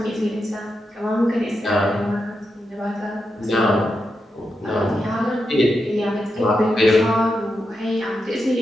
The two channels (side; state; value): both; normal; correlation 0.87